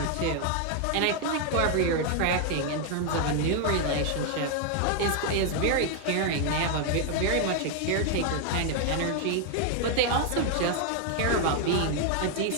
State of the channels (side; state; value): both; different; correlation 0.00